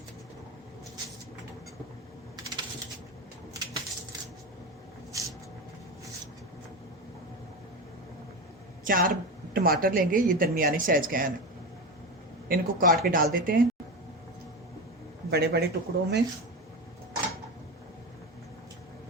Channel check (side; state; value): both; normal; correlation 0.21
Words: चार टमाटर लेंगे, ये दरमियाने साइज के हैं। इनको काट के डाल देते हैं बड़े बड़े टुकड़ों में।